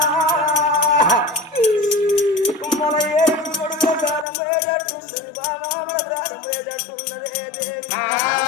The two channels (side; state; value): right; drops out; at 4.2 s